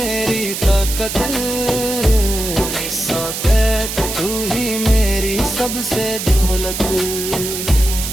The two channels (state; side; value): noise; right; hiss, 5 dB below the sound